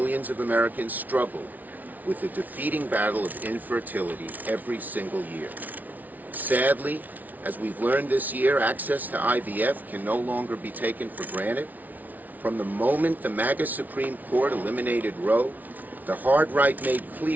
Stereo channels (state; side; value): late; left; 0.078 ms